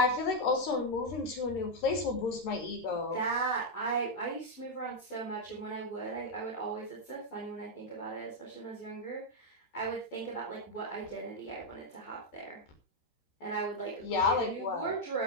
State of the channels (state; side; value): late; right; 13 ms